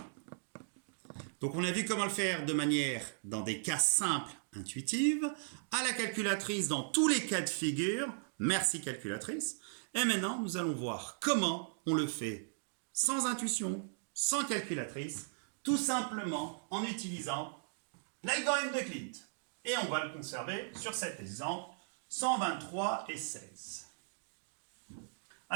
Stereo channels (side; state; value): left; silent; digital silence